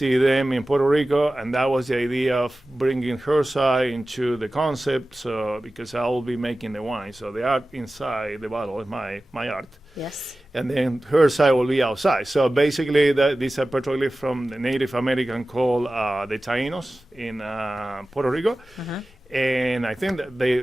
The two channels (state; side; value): normal; both; correlation 0.96